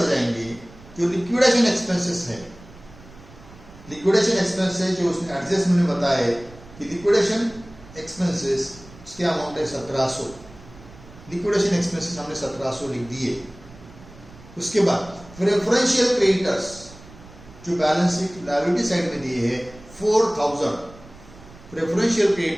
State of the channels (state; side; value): noise; right; rumble, 21 dB below the sound